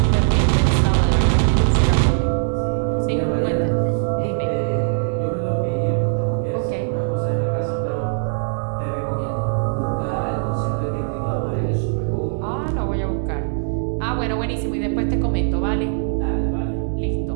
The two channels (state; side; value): silent; left; digital silence